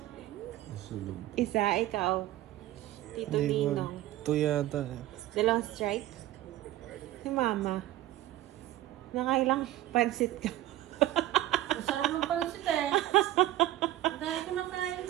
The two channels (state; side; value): quieter; left; 14.9 dB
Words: Isa, ikaw. Tito Ninong. Ito yata. 2 strike? Si Mama. Nakailang pansit ka? Masarap ng pancit eh. Dahil ko nakain